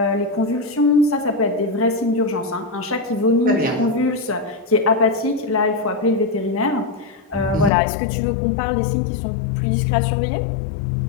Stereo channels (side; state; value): right; drops out; at 7.7 s